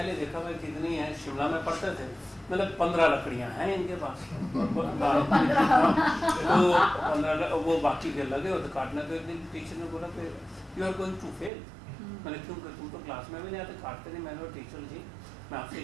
देखा भाई कितनी है, शिमला में पढ़ते थे, मतलब 15 लकड़ियाँ हैं इनके पास, तो 15 वो बाकी के लगे और तो काटना, तो एक दिन टीचर ने बोला कि you are going to fail. मैंने क्यों, तुम तो क्लास में भी नहीं आते, काटते नहीं। मैंने टीचर जी मैं आपसे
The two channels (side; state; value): left; drops out; at 11.5 s